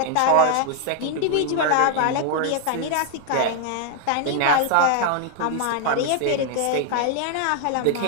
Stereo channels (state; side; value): different; both; correlation 0.00